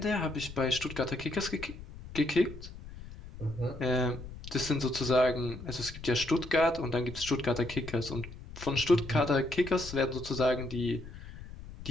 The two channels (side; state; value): left; noise; rumble, 13 dB below the sound